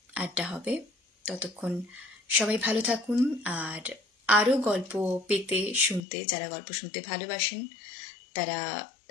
আড্ডা হবে। ততক্ষণ সবাই ভালো থাকুন। আর আরও গল্প পেতে শুনতে, যারা গল্প শুনতে ভালোবাসেন তারা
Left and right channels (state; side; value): drops out; right; at 6.0 s